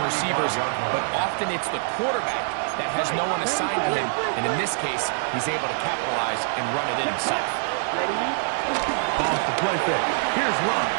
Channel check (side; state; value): left; silent; digital silence